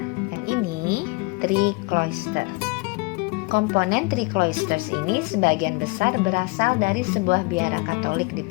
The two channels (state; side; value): quieter; right; 27.4 dB